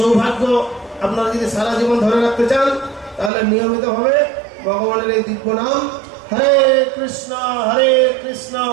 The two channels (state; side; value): drops out; left; at 3.3 s